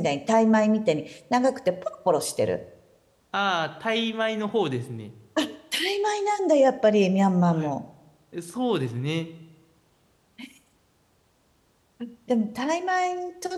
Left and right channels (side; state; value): both; identical; correlation 1.00